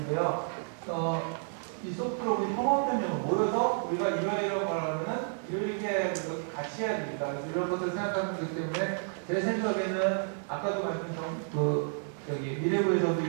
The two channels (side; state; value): left; silent; digital silence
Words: 이 소프트로 협업변형을 모여서 우리가 이러이러한 걸 하면은 이렇게 같이 해야 됩니다. 그래서 이런 것들을 생각하는 거기 때문에 제 생각에는 아까도 말씀드린 여기 미래부에서도